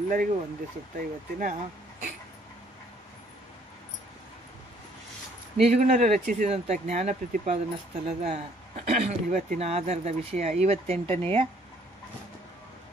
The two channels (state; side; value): normal; both; correlation 0.62